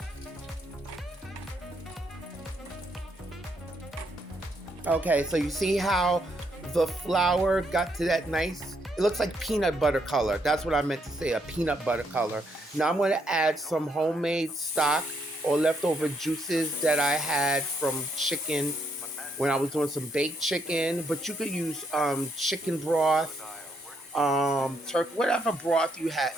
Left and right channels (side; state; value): both; normal; correlation 0.75